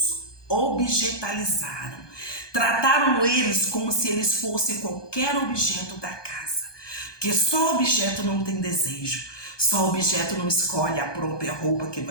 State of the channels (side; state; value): right; late; 1.2 ms